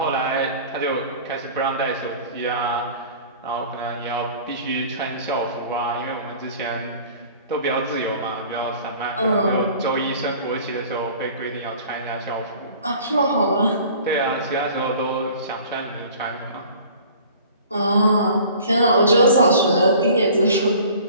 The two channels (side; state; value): both; inverted; correlation -0.46